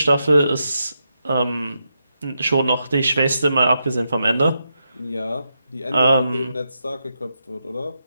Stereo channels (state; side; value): inverted; both; correlation -0.84